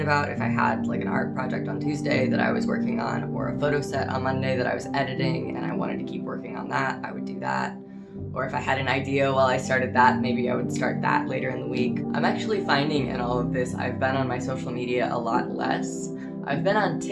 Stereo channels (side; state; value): both; identical; correlation 1.00